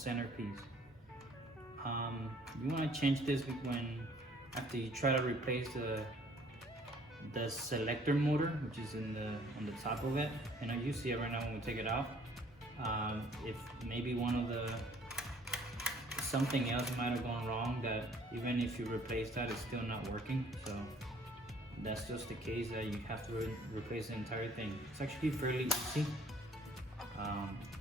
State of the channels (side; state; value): both; normal; correlation 0.57